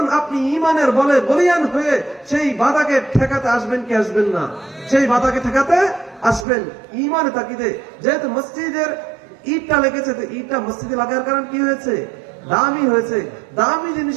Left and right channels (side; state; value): left; drops out; at 6.5 s